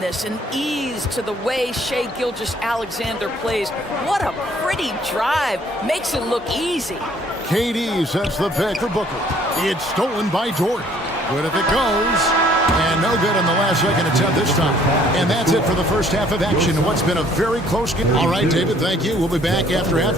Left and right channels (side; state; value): both; normal; correlation 0.60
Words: and ease to the way Shai Gilgeous-Alexander plays. What a pretty drive. Makes it look easy. KD sets the pick for Booker. It's stolen by Dort. Good if it goes. And no good on the last second attempt this time. And that's it for the first half of action. What's been a very close game. All right, David, thank you. We'll be back after